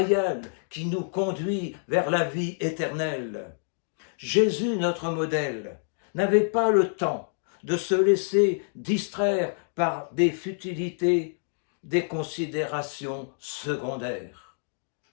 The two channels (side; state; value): right; silent; digital silence